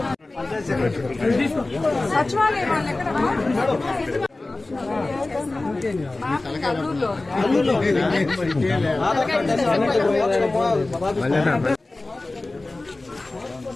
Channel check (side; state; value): right; quieter; 3.1 dB